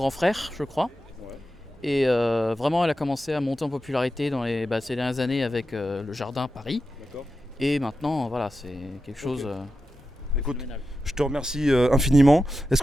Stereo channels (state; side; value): normal; both; correlation 0.90